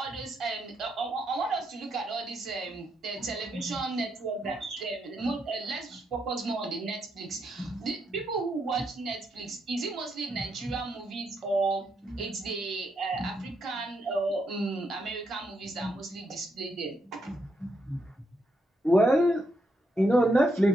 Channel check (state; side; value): normal; both; correlation 0.79